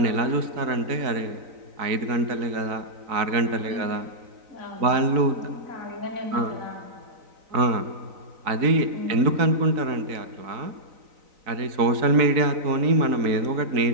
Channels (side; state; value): left; late; 3.9 ms